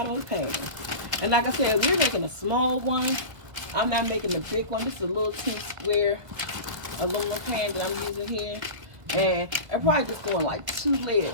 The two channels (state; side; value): late; left; 1.7 ms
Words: of the pan. And like I said, we're making a small one. I'm not making the big one. This is a little square aluminum pan that I'm using here. And I'm probably just doing like 2